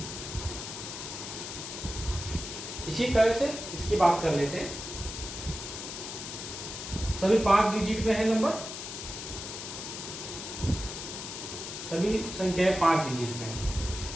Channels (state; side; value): noise; left; hiss, 8 dB below the sound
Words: इसी तरह से इसकी बात कर लेते हैं। सभी 5 डिजिट में है नंबर, सभी संख्याएं 5 डिजिट में है।